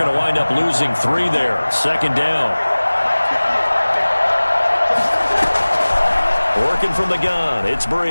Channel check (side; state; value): both; inverted; correlation -1.00